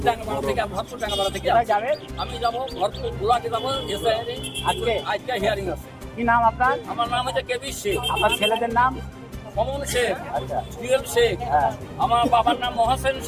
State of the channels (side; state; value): both; identical; correlation 1.00